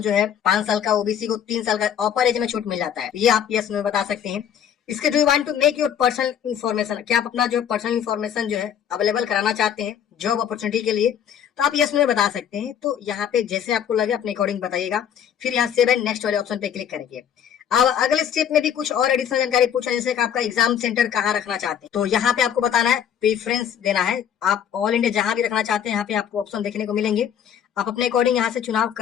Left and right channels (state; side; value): quieter; right; 9.0 dB